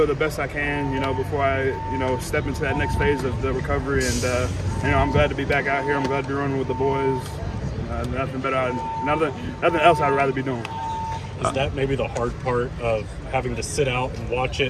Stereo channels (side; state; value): both; identical; correlation 1.00